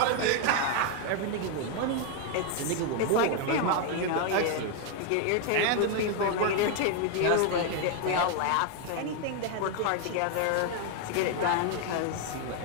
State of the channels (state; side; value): different; both; correlation 0.00